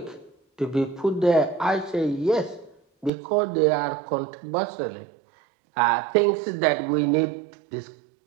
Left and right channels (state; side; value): drops out; left; at 3.1 s